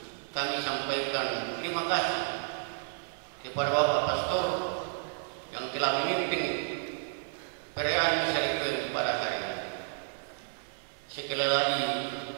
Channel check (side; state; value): left; silent; 57 dB below the other